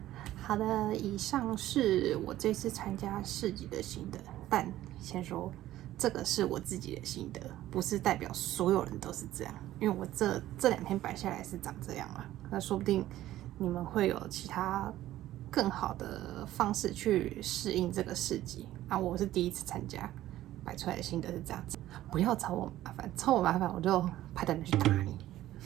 好的，以上是我这次参加市集的心得，但先说这个是我自己的心得，不是代表所有人都是这样。因为我这2天摆下来是长这样啊，那说不定你们会有其他更好的方式去适应这个市集啊。我是第一次参加，摆出来的心得是这样子。不要找我麻烦，找我麻烦我就派人去打你。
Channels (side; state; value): left; quieter; 14.3 dB